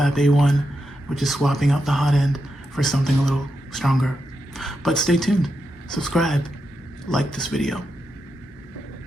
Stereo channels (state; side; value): normal; both; correlation 0.86